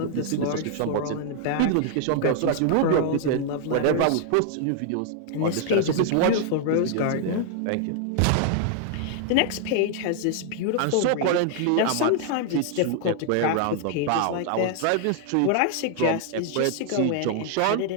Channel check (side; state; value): both; different; correlation 0.00